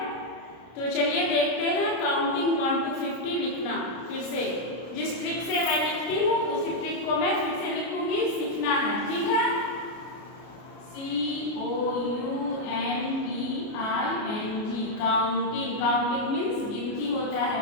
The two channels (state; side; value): late; right; 33 ms